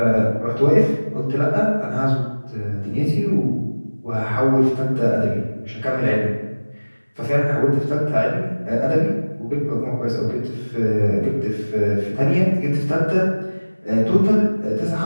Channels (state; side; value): inverted; both; correlation -1.00